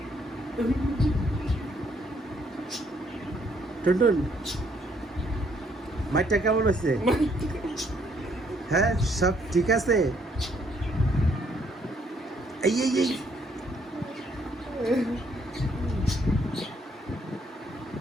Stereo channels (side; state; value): both; normal; correlation 0.68